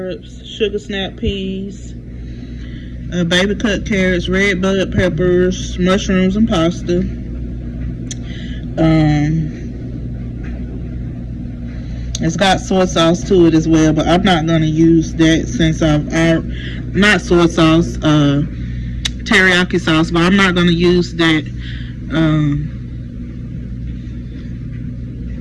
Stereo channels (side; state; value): both; identical; correlation 1.00